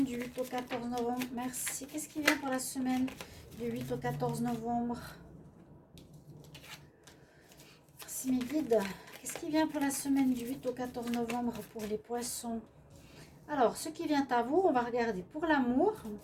du 8 au 14 novembre? Merci. Qu'est-ce qui vient pour la semaine du 8 au 14 novembre? Voici mes guides. Qu'est-ce qui vient pour la semaine du 8 au 14 novembre pour les poissons? Alors, ce qui vient à vous, on va regarder pour l'amour.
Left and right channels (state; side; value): identical; both; correlation 1.00